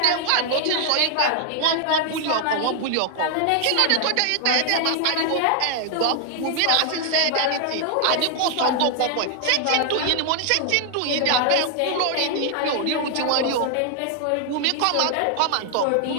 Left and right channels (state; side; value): different; both; correlation 0.00